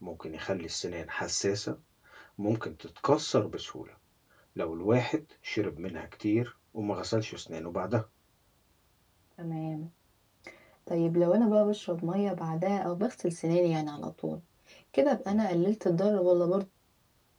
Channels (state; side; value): identical; both; correlation 1.00